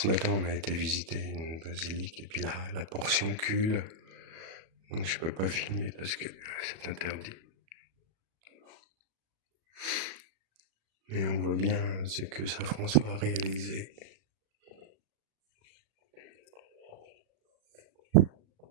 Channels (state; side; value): late; left; 37 ms